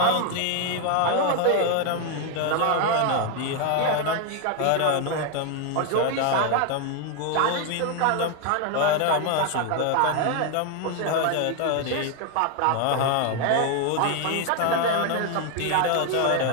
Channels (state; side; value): different; both; correlation 0.01